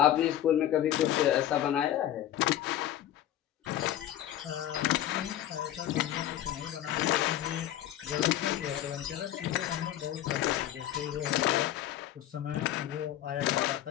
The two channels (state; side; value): quieter; right; 12.2 dB